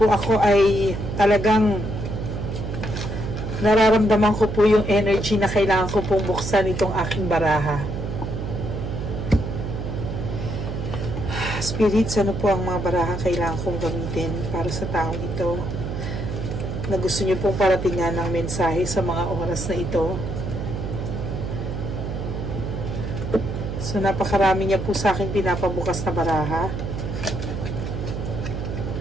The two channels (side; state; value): right; noise; hum, 5 dB below the sound